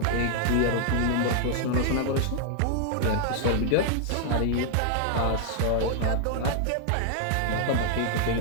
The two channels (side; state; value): both; different; correlation 0.00